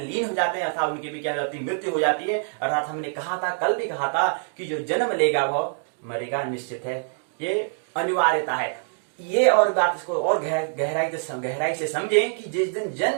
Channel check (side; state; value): left; silent; digital silence